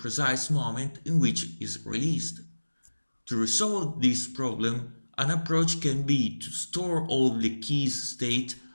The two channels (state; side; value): inverted; both; correlation -1.00